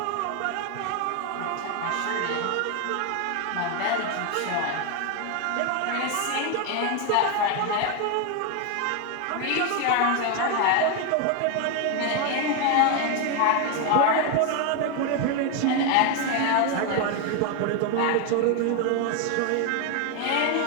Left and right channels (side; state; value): both; different; correlation 0.01